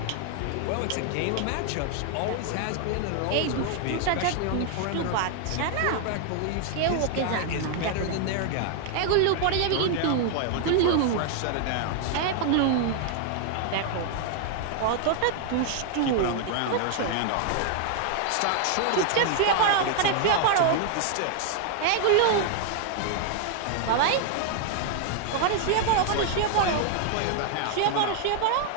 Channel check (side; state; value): both; different; correlation 0.00